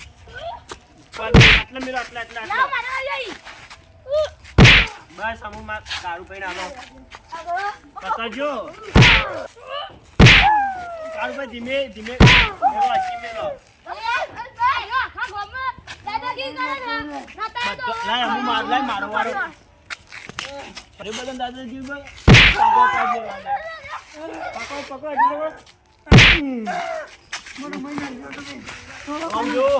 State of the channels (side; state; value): both; identical; correlation 1.00